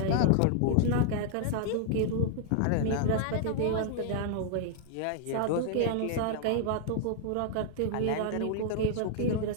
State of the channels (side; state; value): both; different; correlation -0.01